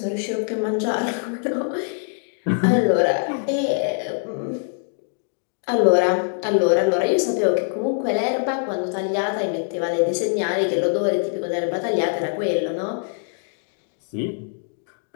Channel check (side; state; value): right; silent; digital silence